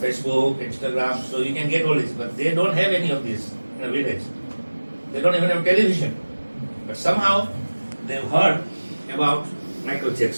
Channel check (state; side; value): inverted; both; correlation -1.00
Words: Instagram, so you can get all this, but they don't have any of this in a village. They don't even have television. But somehow they've heard about Michael